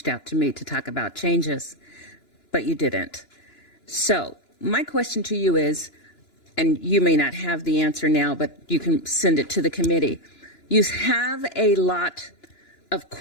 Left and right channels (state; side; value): late; right; 2.9 ms